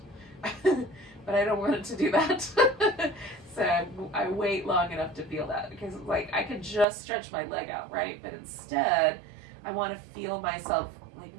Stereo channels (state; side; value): drops out; left; at 6.9 s